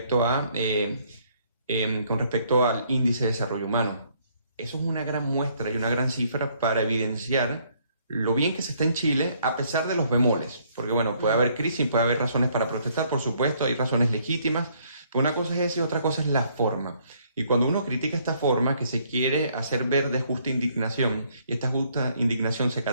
al índice de desarrollo humano. Eso es una gran muestra y una gran cifra para evidenciar lo bien que se está en Chile, a pesar de los bemoles. Porque bueno, puede haber crisis, puede haber razones para protestar, por supuesto, hay razones legítimas, pero una cosa es eso y otra cosa es la forma. Y cuando uno critica esta forma, que se quiere hacer ver de justa indignación, y esta justa indignación se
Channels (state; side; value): inverted; both; correlation -0.66